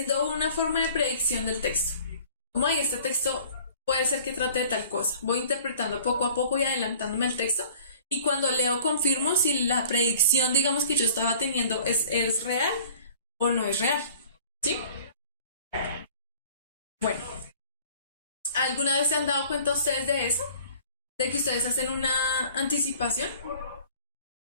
una forma de predicción del texto. Como hay este texto puede ser que trate de tal cosa. Voy interpretando poco a poco y adelantándome el texto. Y cuando leo confirmo si la predicción, digamos, que yo estaba teniendo es real o no es real. ¿Sí? Bueno. ¿Alguna vez se han dado cuenta ustedes de eso? ¿De que ustedes hacen una anticipación?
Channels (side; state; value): both; inverted; correlation -0.49